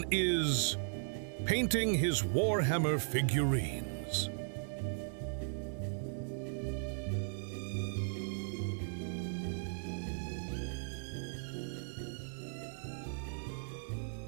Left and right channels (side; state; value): left; silent; digital silence